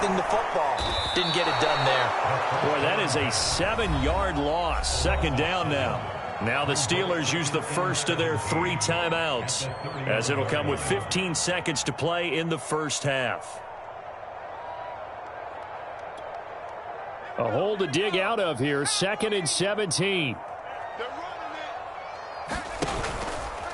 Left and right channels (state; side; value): identical; both; correlation 1.00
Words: the football. Didn't get it done there. Boy, that is a 7-yard loss. Second down now. Now the Steelers use the first of their 3 timeouts, as it'll come with 15 seconds to play in the first half. A hole to dig out of here, 2nd and 17.